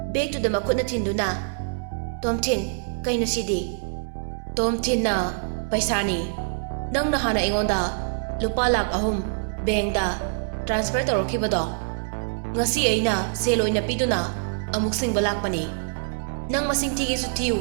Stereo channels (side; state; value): left; silent; 62 dB below the other